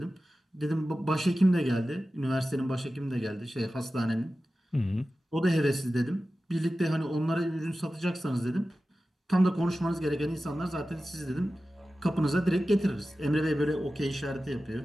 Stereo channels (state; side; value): normal; both; correlation 0.94